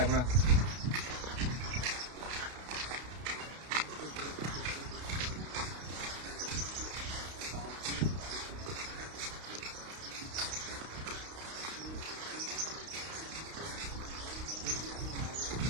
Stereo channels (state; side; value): late; left; 32 ms